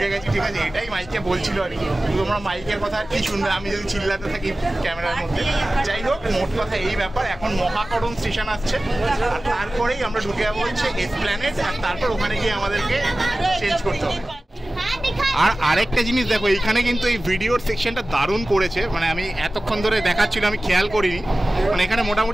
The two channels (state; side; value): normal; both; correlation 0.96